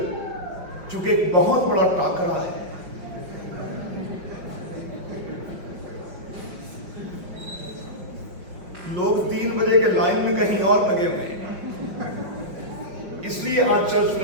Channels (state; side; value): late; left; 5.5 ms